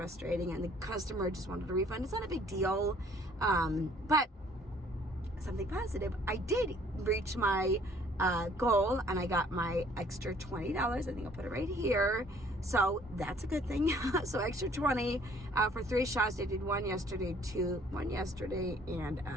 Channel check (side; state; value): both; normal; correlation 0.58